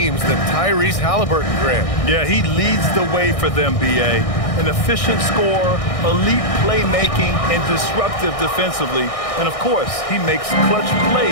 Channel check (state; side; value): late; right; 1.6 ms